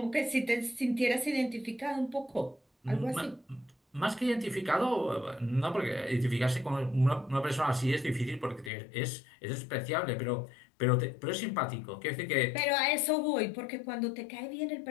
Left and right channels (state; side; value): drops out; right; at 8.7 s